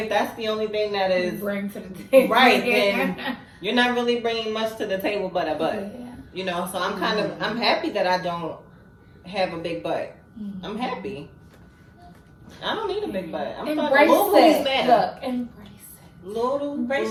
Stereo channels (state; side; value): identical; both; correlation 1.00